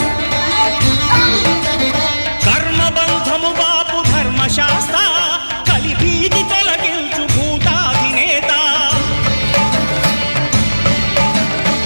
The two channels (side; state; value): both; inverted; correlation -1.00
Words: కర్మబంధము బాపు ధర్మశాస్త్ర కలిభీతి తొలగించు భూతాధినేత